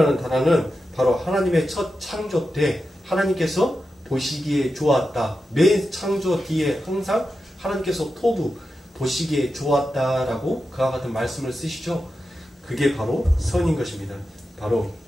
단어는 바로 하나님의 첫 창조 때 하나님께서 보시기에 좋았다. 맨 창조 뒤에 항상 하나님께서 토부 보시기에 좋았다라고 그와 같은 말씀을 쓰시죠. 그게 바로 선인 것입니다. 바로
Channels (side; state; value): both; normal; correlation 0.90